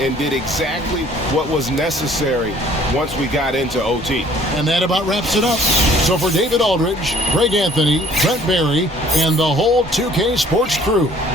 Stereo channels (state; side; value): normal; both; correlation 0.56